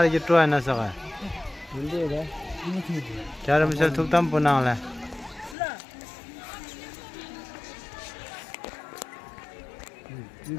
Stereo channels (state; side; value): drops out; right; at 5.6 s